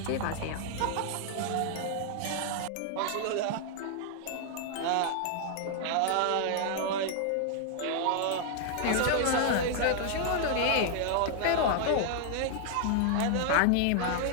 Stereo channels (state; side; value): different; both; correlation 0.00